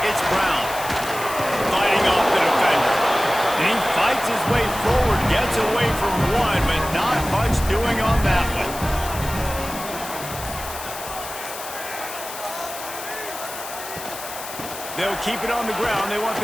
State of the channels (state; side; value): noise; left; hiss, 10 dB below the sound